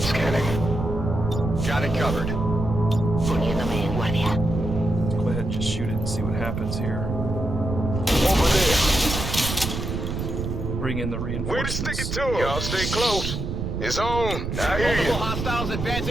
Scanning. Got it covered. Poniéndome en guardia. Go ahead and just shoot it and see what happens here. Over there. Bring in the Way to reinforcements. stick it to him. Y'all stay close. It's on. I hear you. Hostiles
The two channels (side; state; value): right; noise; rumble, 4 dB below the sound